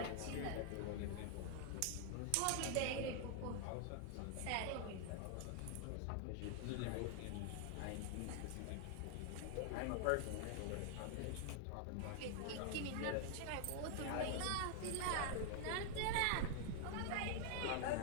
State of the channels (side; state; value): both; different; correlation 0.00